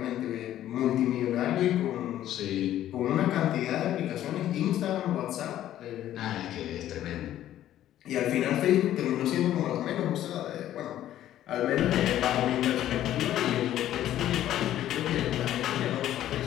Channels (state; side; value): quieter; right; 12.4 dB